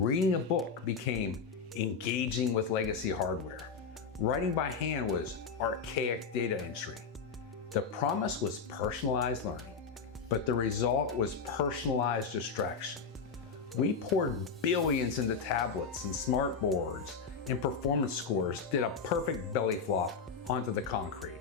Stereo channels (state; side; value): quieter; right; 5.4 dB